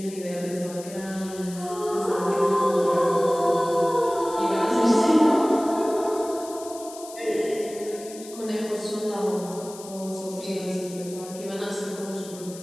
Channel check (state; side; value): noise; left; hiss, 16 dB below the sound